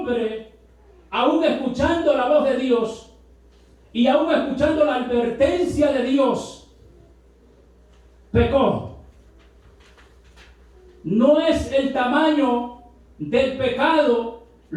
aún escuchando la voz de Dios y aún escuchando la advertencia de Dios, pecó. No es el tamaño del pecado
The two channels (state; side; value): identical; both; correlation 1.00